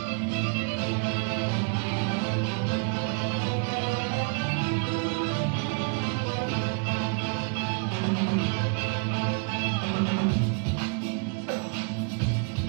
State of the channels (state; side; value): quieter; left; 36.2 dB